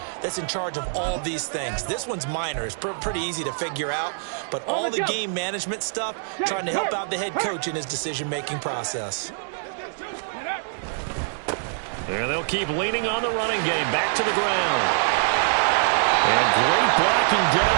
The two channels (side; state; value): left; silent; digital silence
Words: that's in charge of all these things. This one's minor. It's pretty easy to figure out. But all the game management stuff, trying to help out the head coach in his decision-making process. And they'll keep leaning on the running game. Back to the ground. And great blocking